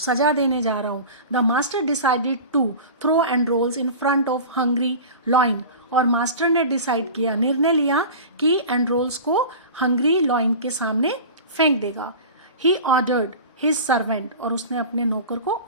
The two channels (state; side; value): inverted; both; correlation -0.34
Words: देने जा रहा हूँ। The master decided to throw Androcles in front of hungry lion. और मास्टर ने डिसाइड किया, निर्णय लिया कि एंड्रोल्स को हंग्री लॉइन के सामने फेंक देगा। He ordered his servant. और उसने अपने नौकर को